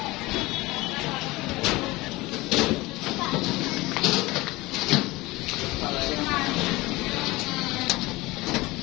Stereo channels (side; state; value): right; quieter; 20.9 dB